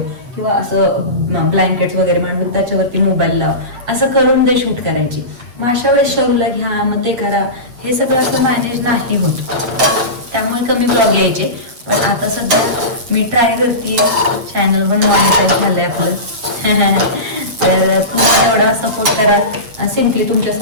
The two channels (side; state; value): left; late; 8.4 ms